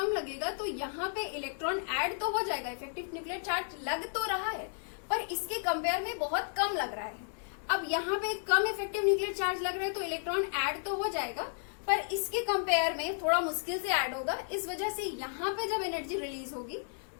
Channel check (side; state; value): right; silent; digital silence